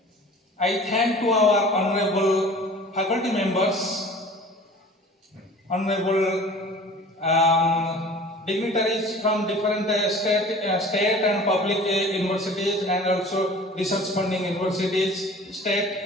I thank to our honorable faculty members, honorable dignitaries from different state and public universities and also research funding universities,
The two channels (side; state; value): both; normal; correlation 0.44